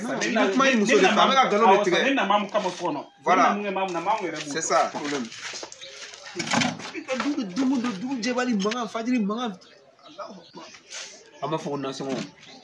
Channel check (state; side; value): identical; both; correlation 1.00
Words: sa ne kuma ye muso de fɛ an bɛ ka nkalon de tigɛ ne na mamu kama so kɔnɔ voilà mamu yɛrɛ c'est ça problème i ka dugu jɛbali mankan fajiri mankan an b'a fɔ ko nasɔngɔ